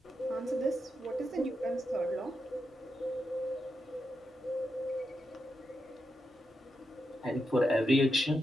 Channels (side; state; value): both; normal; correlation 0.85